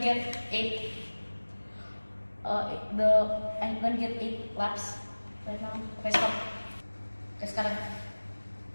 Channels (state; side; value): inverted; both; correlation -1.00